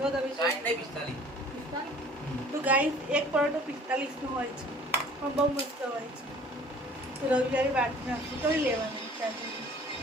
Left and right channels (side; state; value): both; normal; correlation 0.51